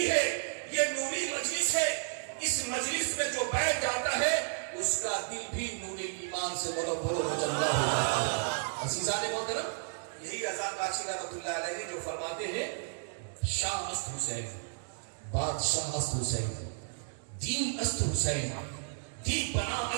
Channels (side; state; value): left; silent; digital silence